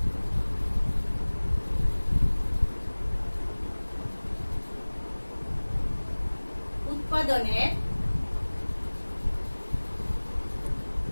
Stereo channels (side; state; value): both; inverted; correlation -1.00